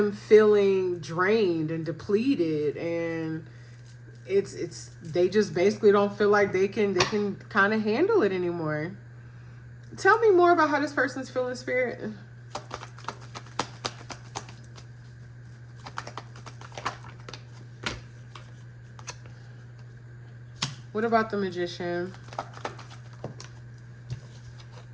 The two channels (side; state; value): both; identical; correlation 1.00